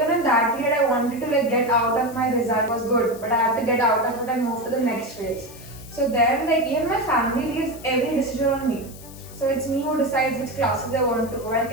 in that period, I wanted to get out of my result was good, but I had to get out of it and move to the next phase. So then even my family leaves every decision on me. So it's me who decides which classes I want to go and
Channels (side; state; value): left; noise; hiss, 19 dB below the sound